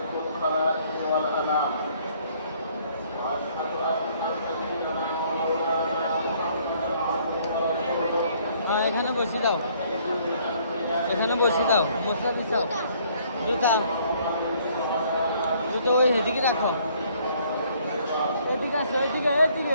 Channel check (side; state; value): both; inverted; correlation -0.62